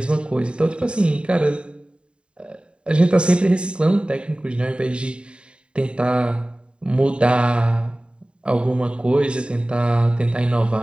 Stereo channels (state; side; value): late; left; 0.054 ms